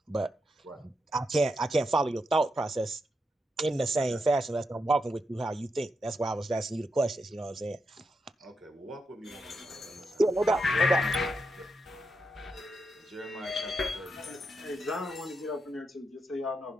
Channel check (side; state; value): both; normal; correlation 0.84